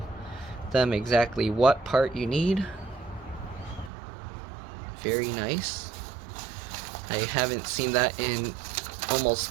them exactly what part you need. Very nice. I haven't seen that in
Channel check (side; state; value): left; drops out; at 3.9 s